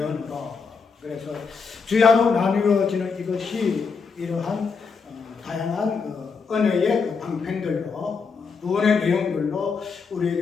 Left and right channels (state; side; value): quieter; right; 5.2 dB